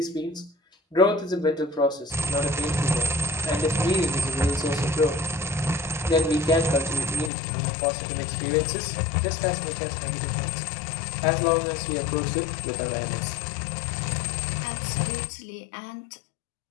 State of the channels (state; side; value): drops out; right; at 7.3 s